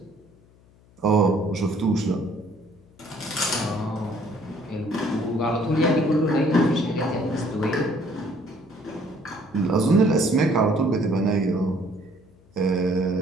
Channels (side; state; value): left; noise; hum, 29 dB below the sound